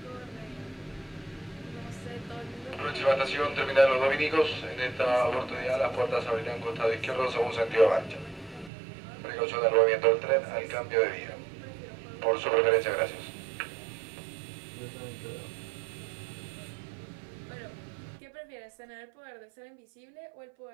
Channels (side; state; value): left; drops out; at 8.7 s